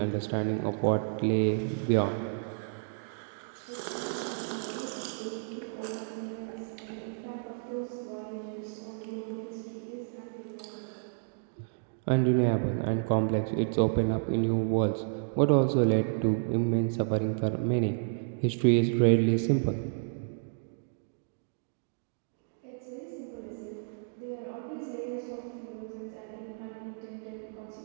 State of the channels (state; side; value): silent; left; digital silence